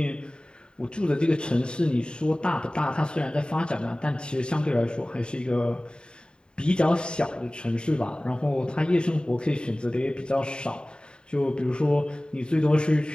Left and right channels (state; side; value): late; right; 0.049 ms